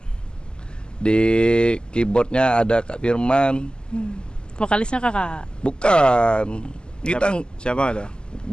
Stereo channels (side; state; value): right; late; 0.047 ms